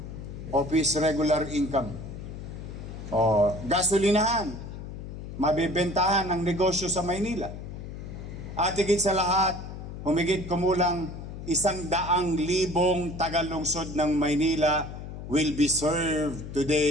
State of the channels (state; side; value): noise; left; hum, 10 dB below the sound